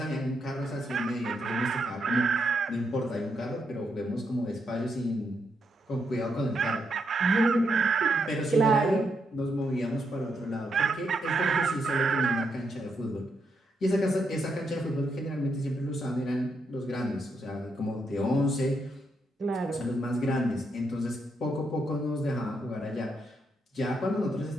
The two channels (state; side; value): normal; both; correlation 0.80